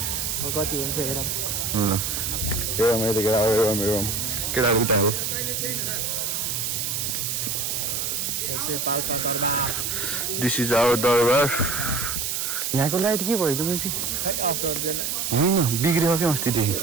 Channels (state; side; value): noise; right; hiss, 1 dB below the sound